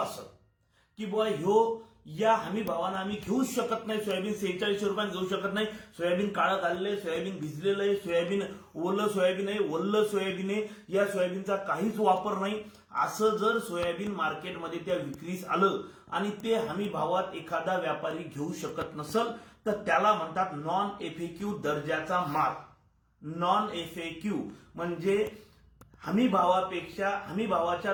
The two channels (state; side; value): identical; both; correlation 1.00